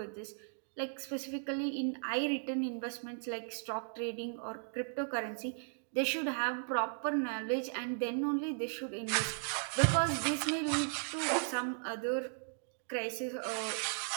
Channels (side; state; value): left; silent; digital silence